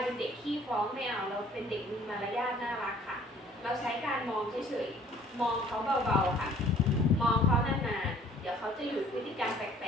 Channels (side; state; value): both; normal; correlation 0.56